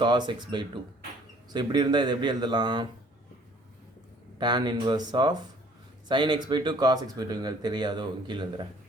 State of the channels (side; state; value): both; normal; correlation 0.56